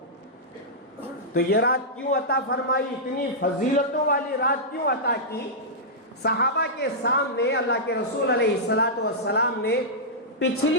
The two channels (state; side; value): normal; both; correlation -0.11